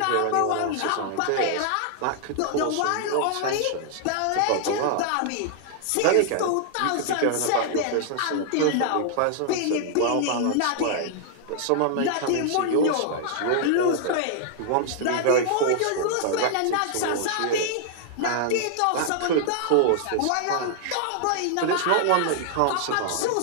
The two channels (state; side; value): different; both; correlation 0.00